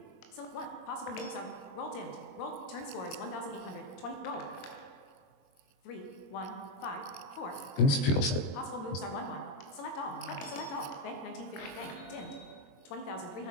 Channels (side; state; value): right; late; 22 ms